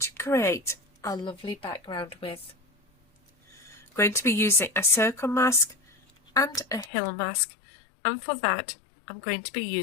create a lovely background with. I'm going to be using a circle mask and a hill mask, and for that I'm going to be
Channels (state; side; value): drops out; right; at 6.9 s